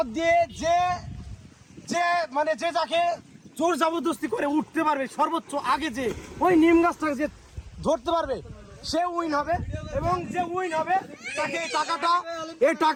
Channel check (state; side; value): identical; both; correlation 1.00